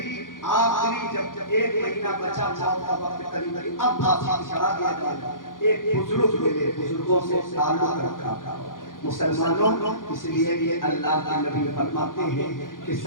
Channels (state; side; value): late; right; 0.90 ms